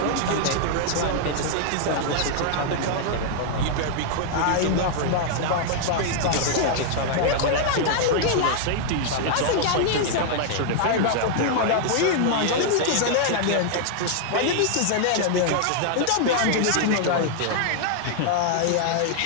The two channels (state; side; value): different; both; correlation 0.00